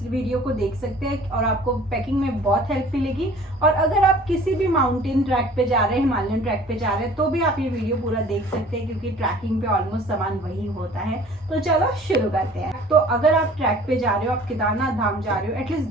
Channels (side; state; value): both; normal; correlation 0.49